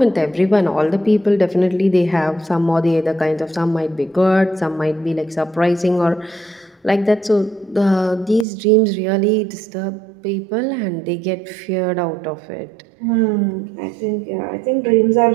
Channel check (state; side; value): drops out; left; at 8.5 s